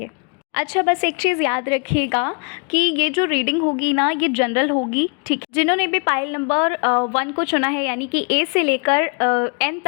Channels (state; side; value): quieter; right; 37.9 dB